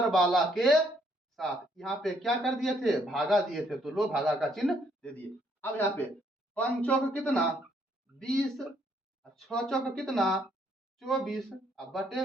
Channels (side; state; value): both; normal; correlation 0.69